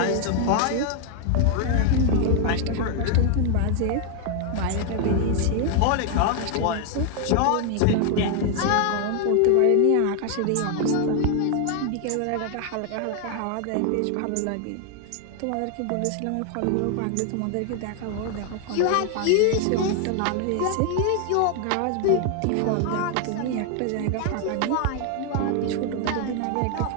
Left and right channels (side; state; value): both; different; correlation 0.00